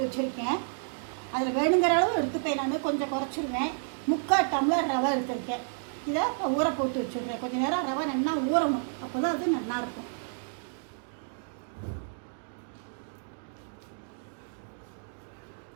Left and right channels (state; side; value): silent; left; digital silence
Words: வச்சுருக்கேன். அதில் வேணுங்கிற அளவு எடுத்துப்பேன். நான் கொஞ்சம் குறைச்சிருவேன். 3/4 டம்ளர் ரவை எடுத்துருக்கேன். இதை ஊற போட்டு வச்சுருக்கேன். கொஞ்சம் நேரம் ரவை நல்லா ஊறணும், அப்போ தான் அது நல்லாயிருக்கும்.